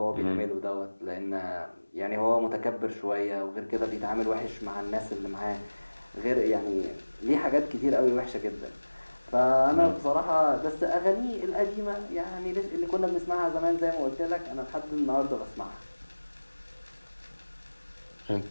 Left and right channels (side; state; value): both; inverted; correlation -1.00